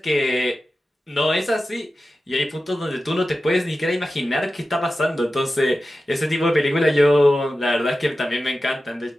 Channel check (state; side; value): normal; both; correlation 0.94